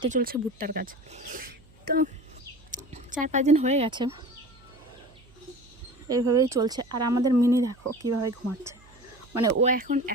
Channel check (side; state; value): right; noise; hum, 27 dB below the sound